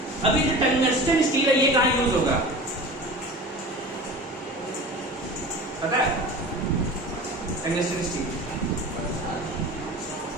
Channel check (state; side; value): normal; both; correlation 0.36